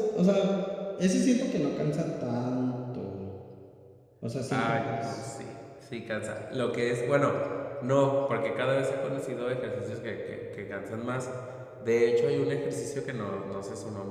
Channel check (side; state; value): both; identical; correlation 1.00